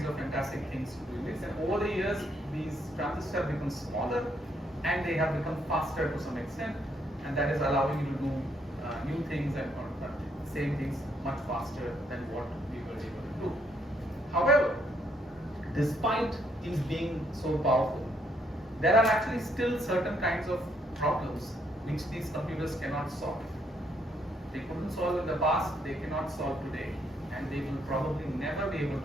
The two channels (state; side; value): normal; both; correlation 0.71